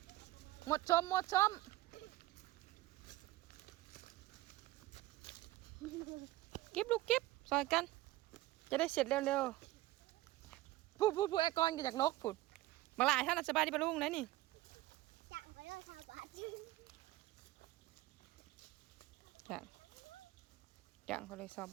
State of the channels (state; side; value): quieter; left; 17.1 dB